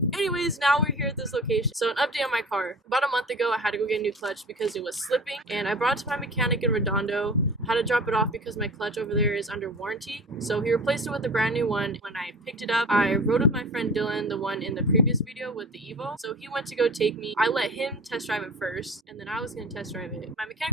Anyways, now we're here at this location. So an update on my car. About a month ago, I had to go get a new clutch because it was slipping, and I brought it to my mechanic in Redondo. I had to drop it off because my clutch over there is under warranty. So he replaced it with a brand new one. When I picked it up, I rode with my friend Dylan, the one in the previous video with the Evo. So he went to go take me. I let him test drive it first, and then I was gonna test drive it. My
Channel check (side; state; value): both; normal; correlation 0.38